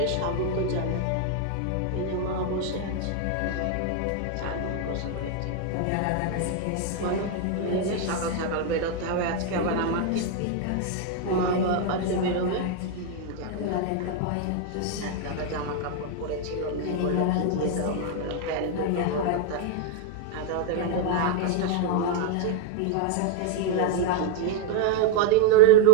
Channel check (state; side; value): different; both; correlation 0.00